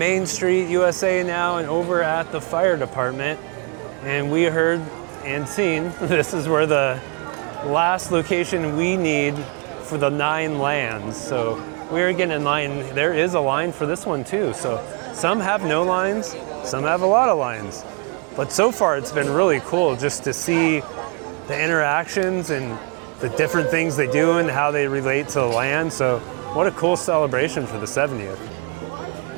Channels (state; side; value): quieter; left; 36.5 dB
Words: Street, USA now, and over at the fire department. And we heard and seen this is where the last location we need for the 9 lands. So we're getting in line. There is a line for this one too. So some have no lines, some have a lot of lines. But so far it's been really cool just to see the interactions and the different things they do and how they relate to the land. So what a cool celebration for the 70th. We got